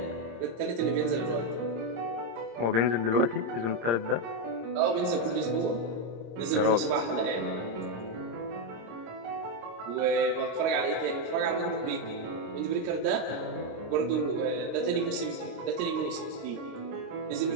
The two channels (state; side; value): late; left; 26 ms